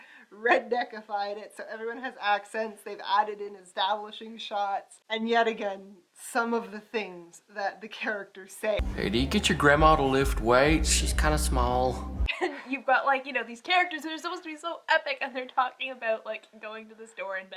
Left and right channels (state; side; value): identical; both; correlation 1.00